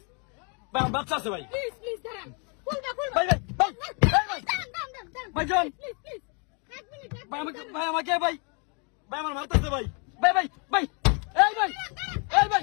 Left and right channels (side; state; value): right; quieter; 36.3 dB